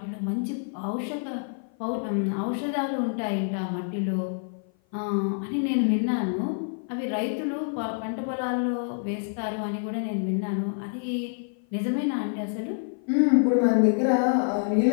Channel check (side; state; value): right; silent; 55 dB below the other